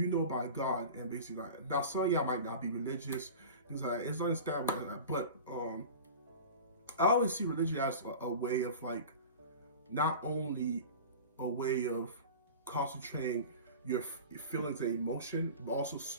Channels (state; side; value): inverted; both; correlation -0.34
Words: know about God?" And basically, like, now some of y'all might not be religious. Things like it's understandable, but I always see religion as a way of like, not only a way of concentrating your feelings and emotion, but also